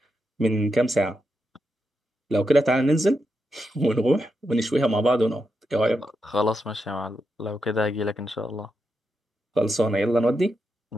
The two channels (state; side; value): normal; both; correlation 0.86